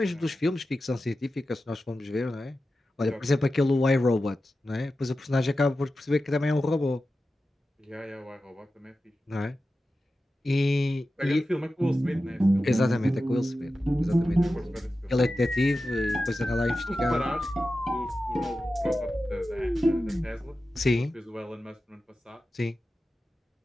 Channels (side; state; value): both; normal; correlation 0.93